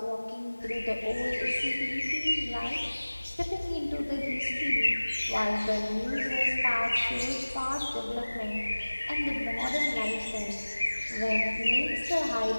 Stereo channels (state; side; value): inverted; both; correlation -1.00